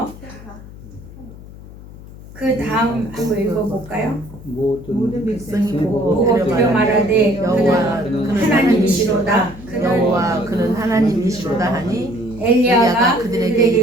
그 다음 한번 읽어볼까요? 모든 백성이 보고 그려 말하되 그는 하나님이시로다. 그는 하나님이시로다 하니 엘리야가 그들에게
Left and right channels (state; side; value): noise; left; hum, 17 dB below the sound